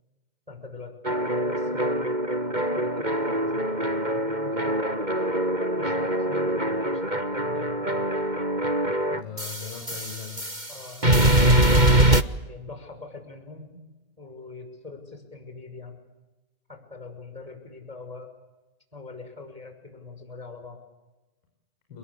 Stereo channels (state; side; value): late; left; 2.1 ms